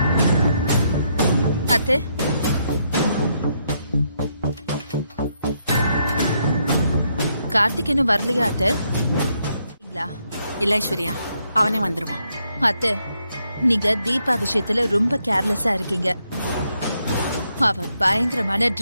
அத்தை, கார்த்திக் இன்னும் வரலையா அத்தை? இல்ல ஐஸ்வர்யா, அவனே வந்துருவான். அத்தை, நீங்க தீபா விஷயத்துல ரொம்ப கேர்லெஸ்ஸா இருக்கீங்க. அவ பயங்கரமான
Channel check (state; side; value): inverted; both; correlation -0.77